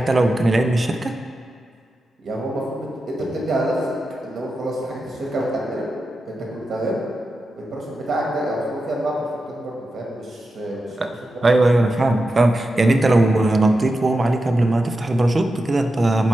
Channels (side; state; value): both; normal; correlation 0.90